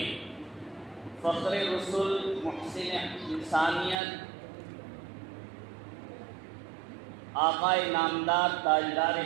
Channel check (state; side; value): drops out; left; at 4.0 s